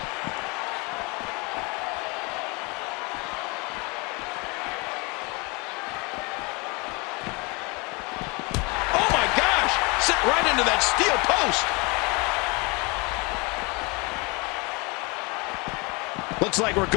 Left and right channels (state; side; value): quieter; right; 28.4 dB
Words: Oh my gosh! Sit right into that steel post. Looks like we're